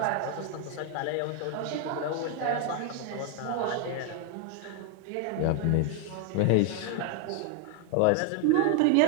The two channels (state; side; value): different; both; correlation 0.00